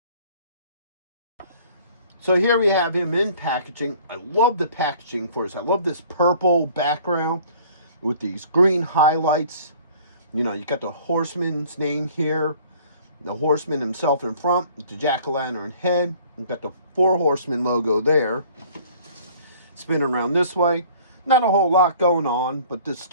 So here we have him in packaging. I love the packaging for this. I love this purple background with these green highlights. You know, you got the horseman's name here. The horseman himself in front with the jack-o'-lantern head. You've got the Four Horsemen logo there. Spinning around this way. Not a whole lot going on, but this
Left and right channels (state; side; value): inverted; both; correlation -0.52